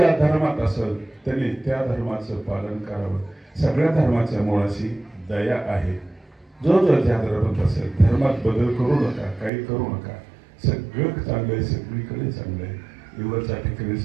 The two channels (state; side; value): drops out; left; at 9.5 s